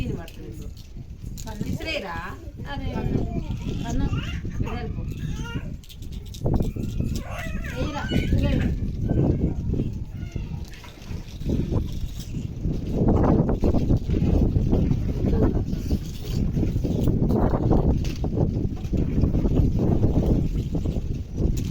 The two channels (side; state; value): both; identical; correlation 1.00